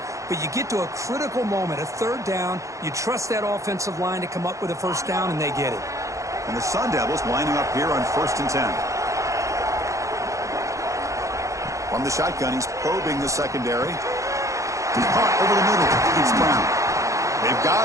but you get to a critical moment, a 3rd down. You trust that offensive line to come up with a first down, and they get it. And the Sun Devils lining up here on 1st and 10. From the shotgun, he's probing the secondary. Caught over the middle. It's Brown. They've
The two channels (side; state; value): left; late; 0.15 ms